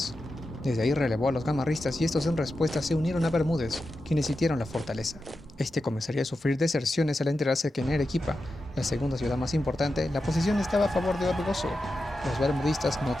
Desde ahí relevó a los gamarristas y estos en respuesta se unieron a Bermúdez, quienes sitiaron la fortaleza. Este comenzaría a sufrir deserciones al enterarse que en Arequipa, la segunda ciudad más importante, la posición estaba a favor de Orbegoso. Los bermudistas no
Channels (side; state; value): both; normal; correlation 0.90